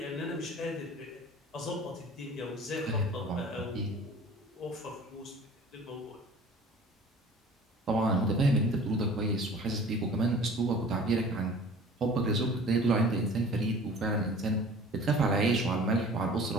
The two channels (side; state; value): both; normal; correlation 0.45